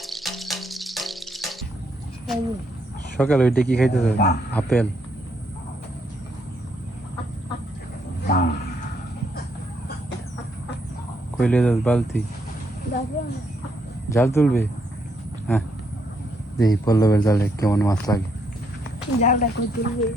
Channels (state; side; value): normal; both; correlation 0.74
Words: সকালে ওইটা কি খাইতেছে? আপেল। কইলে যাস বালতি জাল তুলবে? হ্যাঁ, দেখি পল্লবের জালে কেমন মাছ লাগে।